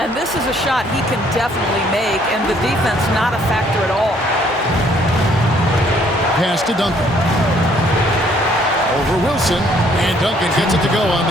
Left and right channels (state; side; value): normal; both; correlation 0.64